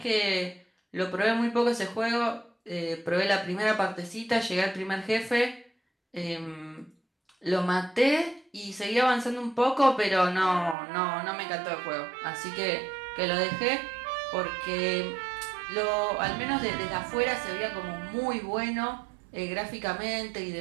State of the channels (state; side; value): drops out; left; at 10.8 s